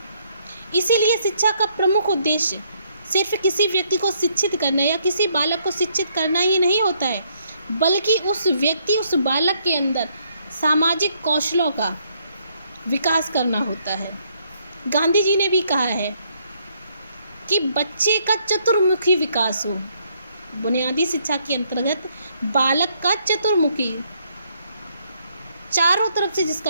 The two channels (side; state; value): both; inverted; correlation -0.70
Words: इसीलिए शिक्षा का प्रमुख उद्देश्य सिर्फ किसी व्यक्ति को शिक्षित करना या किसी बालक को शिक्षित करना ही नहीं होता है, बल्कि उस व्यक्ति, उस बालक के अंदर सामाजिक कौशलों का विकास करना होता है। गांधी जी ने भी कहा है कि बच्चे का चतुर्मुखी विकास हो। बुनियादी शिक्षा के अंतर्गत बालक का चतुर्मुखी, चारों तरफ से